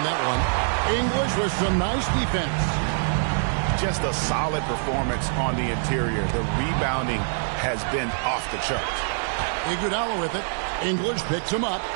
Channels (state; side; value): silent; left; digital silence